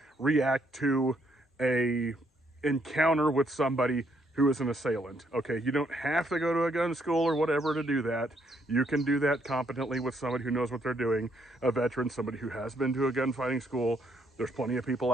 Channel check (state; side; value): normal; both; correlation 0.72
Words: react to a encounter with somebody who is an assailant. Okay, you don't have to go to a gun school or whatever to do that. You can do that competently with somebody who knows what they're doing, a veteran, somebody who has been to a gunfighting school. There's plenty of people